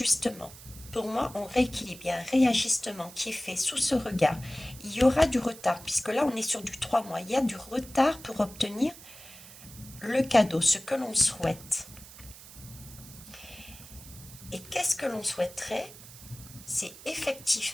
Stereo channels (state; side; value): noise; right; hiss, 17 dB below the sound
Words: Pour moi, on rééquilibre. Il y a un réajustement qui est fait sous ce regard. Il y aura du retard, puisque là, on est sur du 3 mois. Il y a du retard pour obtenir le cadeau, ce que l'on souhaite. Et qu'est-ce que l'on souhaiterait? C'est